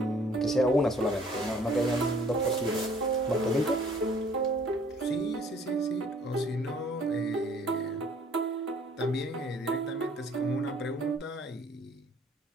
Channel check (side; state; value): both; normal; correlation 0.57